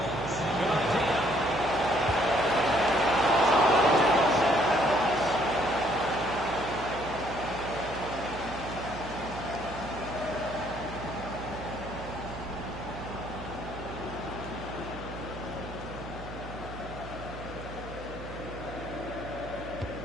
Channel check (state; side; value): noise; right; hum, 12 dB below the sound